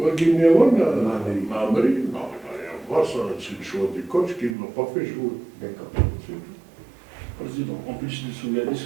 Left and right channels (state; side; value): drops out; left; at 4.5 s